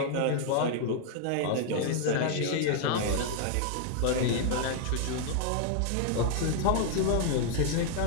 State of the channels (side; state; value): both; different; correlation 0.00